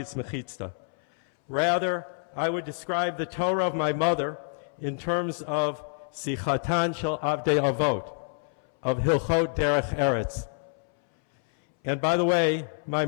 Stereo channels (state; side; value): silent; right; 60 dB below the other